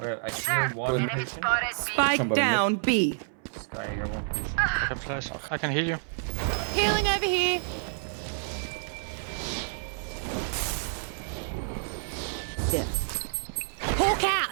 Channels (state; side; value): silent; left; 59 dB below the other